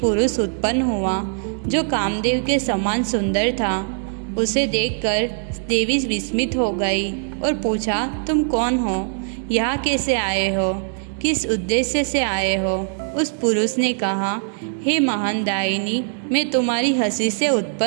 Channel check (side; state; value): left; silent; 62 dB below the other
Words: उत्पन्न हुआ जो कामदेव के समान सुंदर था। उसे देखकर देवी विस्मित हो गई और पूछा, तुम कौन हो? यहाँ कैसे आए हो? किस उद्देश्य से आए हो? उस पुरुष ने कहा, हे महान दायिनी, मैं तुम्हारी हंसी से